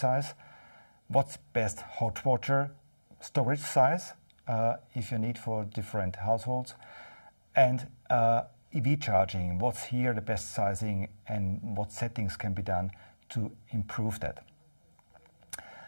What's best hot water storage size if you need for different households? And EV charging. What's here the best sizing and what settings can be done to improve that?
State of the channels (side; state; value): both; inverted; correlation -1.00